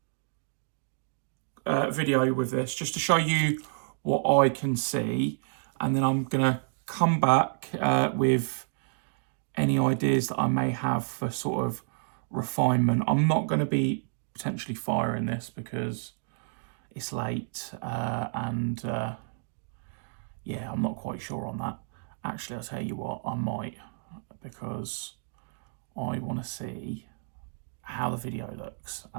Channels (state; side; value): silent; left; digital silence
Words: video with this just to show you what I can see, and then I'm gonna come back with any ideas that I may have for sort of refinement. I'm not going to be potentially firing this because it's late and yeah, I'm not quite sure on that. Actually, I'll tell you what, I might, because I want to see how the video looks